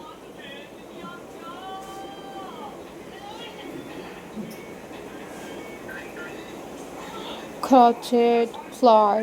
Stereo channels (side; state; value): both; identical; correlation 1.00